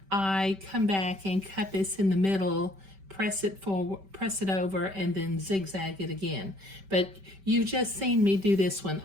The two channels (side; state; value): left; late; 5.2 ms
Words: I come back and cut this in the middle, press it forward, press it over, and then zigzag it again. But you've just seen me do this one.